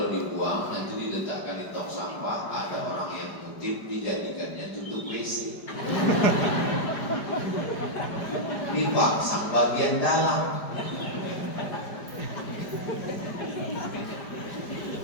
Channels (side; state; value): right; late; 5.0 ms